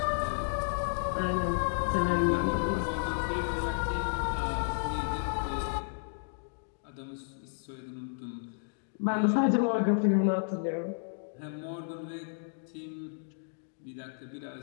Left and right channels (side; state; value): right; silent; digital silence